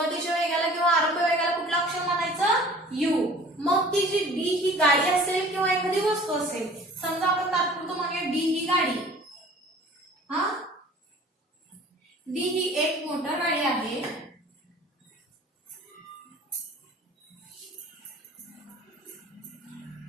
वेगाला किंवा आरंभ वेगाला कुठला अक्षर म्हणायचं, यू. मग ती जी डी ही गाडी असेल किंवा एखादी वस्तू असेल, समजा आपण तात्पुरतं म्हणूया डी ही गाडी. डी ही एक मोटर गाडी आहे.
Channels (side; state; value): both; normal; correlation 0.47